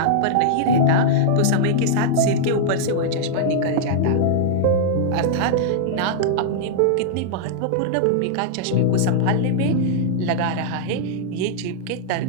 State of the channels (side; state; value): both; different; correlation -0.02